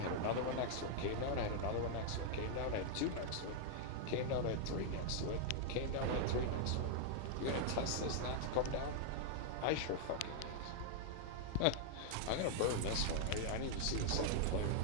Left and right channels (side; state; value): both; different; correlation -0.01